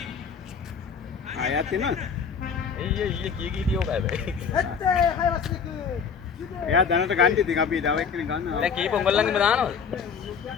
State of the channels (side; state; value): right; quieter; 6.3 dB